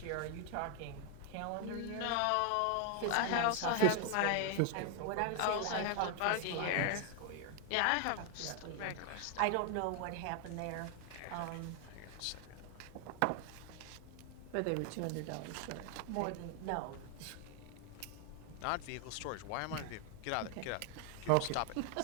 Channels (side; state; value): both; different; correlation 0.00